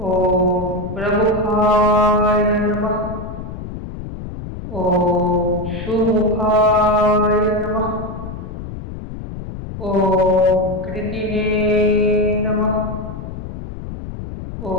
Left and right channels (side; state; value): left; noise; rumble, 9 dB below the sound